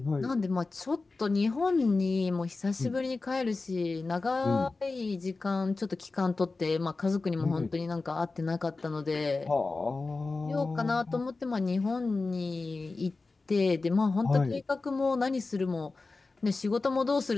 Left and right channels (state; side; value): quieter; right; 3.7 dB